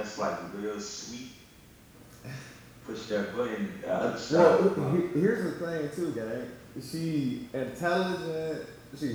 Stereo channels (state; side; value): identical; both; correlation 1.00